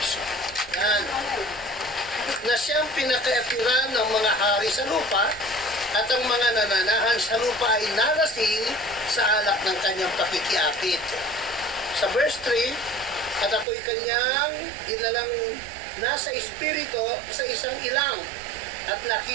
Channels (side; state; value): left; drops out; at 13.7 s